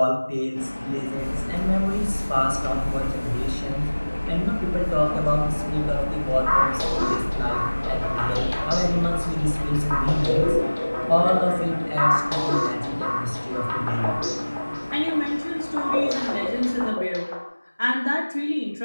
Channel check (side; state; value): both; inverted; correlation -1.00